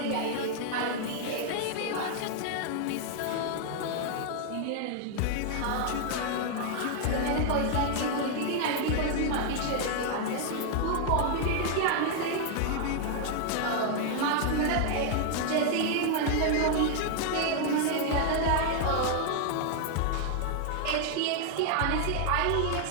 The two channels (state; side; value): different; both; correlation 0.00